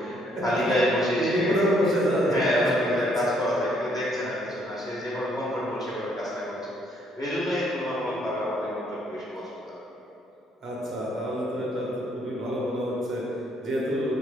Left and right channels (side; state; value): both; normal; correlation 0.68